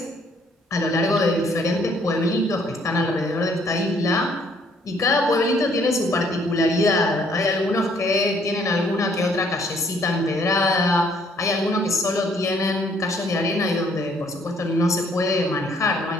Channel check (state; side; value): normal; both; correlation 0.64